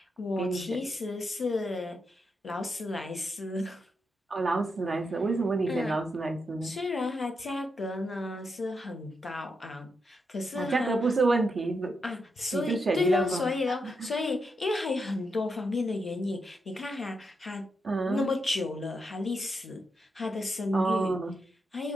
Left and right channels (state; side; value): normal; both; correlation 0.83